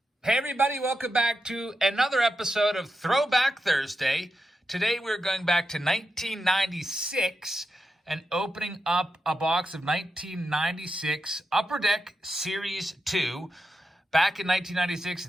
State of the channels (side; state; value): both; normal; correlation 0.87